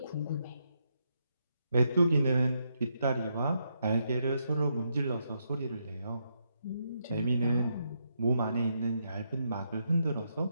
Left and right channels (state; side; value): inverted; both; correlation -0.80